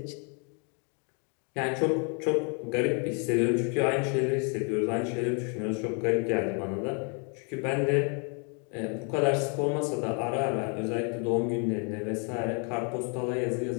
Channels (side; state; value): right; quieter; 37.5 dB